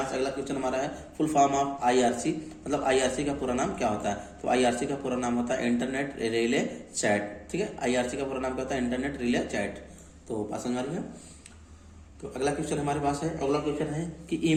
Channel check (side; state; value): both; identical; correlation 1.00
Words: से अगला क्वेश्चन हमारा है फुल फॉर्म ऑफ IRC, मतलब IRC का पूरा नाम क्या होता है? तो IRC का पूरा नाम होता है इंटरनेट रिले चैट। ठीक है, IRC का पूरा नाम क्या होता है? Internet relay chat. तो बात समझ आ रही है। तो अगला क्वेश्चन हमारे पास है, अगला क्वेश्चन है कि